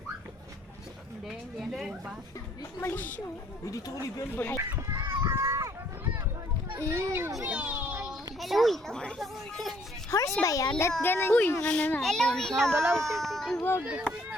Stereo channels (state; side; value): normal; both; correlation 0.64